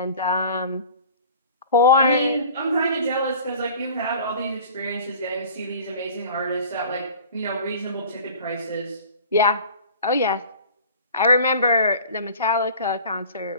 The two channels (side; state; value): both; inverted; correlation -0.43